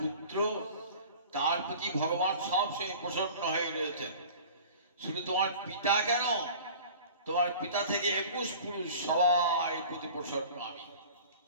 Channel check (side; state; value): both; inverted; correlation -0.42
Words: পুত্র তার প্রতি ভগবান সবসময় প্রসন্ন হয়ে রয়েছেন। শুধু তোমার পিতা কেন, তোমার পিতা থেকে 21 পুরুষ সবাই প্রতি প্রসন্ন আমি।